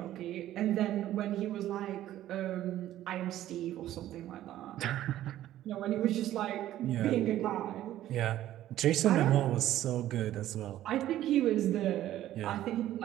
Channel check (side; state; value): left; quieter; 13.2 dB